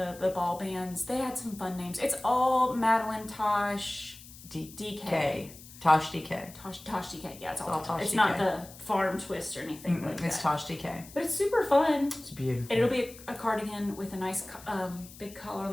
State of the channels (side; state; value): left; noise; hiss, 18 dB below the sound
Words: ball bands. They had some fun names. It's all Madelinetosh DK. Tosh DK. Tosh DK. Yeah, it's all Tosh DK. It's not the farm twist or anything like that. It's Tosh DK. But it's super fun. It's beautiful. And it'll be a cardigan with a nice big collar